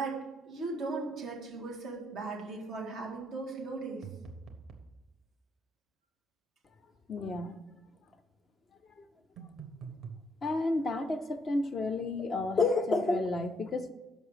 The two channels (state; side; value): normal; both; correlation 0.72